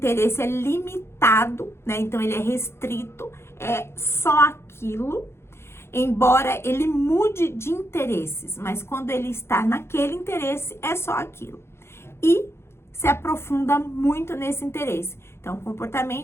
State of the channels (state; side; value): late; right; 0.12 ms